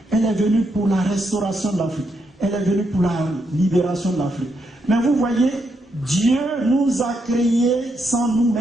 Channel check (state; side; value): normal; both; correlation 0.80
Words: elle est venue pour la restauration de l'Afrique. Elle est venue pour la libération de l'Afrique. Mais vous voyez, Dieu nous a créés sans nous,